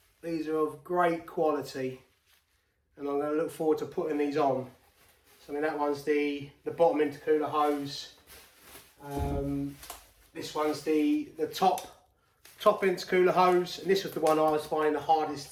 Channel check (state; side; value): identical; both; correlation 1.00